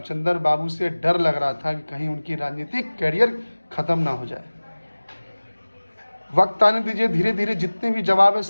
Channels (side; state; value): both; inverted; correlation -1.00